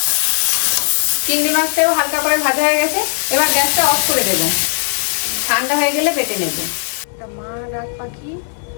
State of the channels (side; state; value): right; silent; digital silence